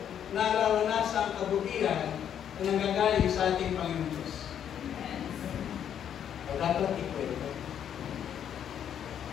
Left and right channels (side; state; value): right; quieter; 9.2 dB